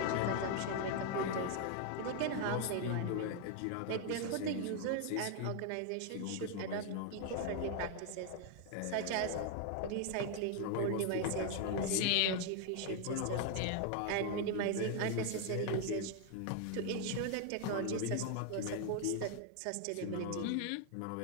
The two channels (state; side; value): different; both; correlation 0.00